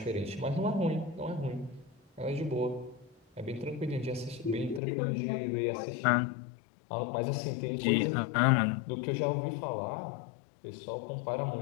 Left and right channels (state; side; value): drops out; right; at 4.8 s